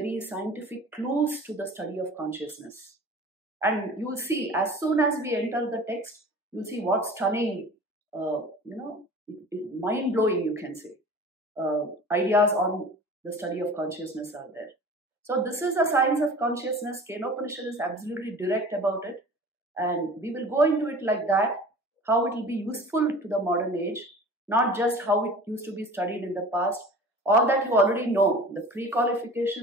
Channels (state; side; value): normal; both; correlation 0.41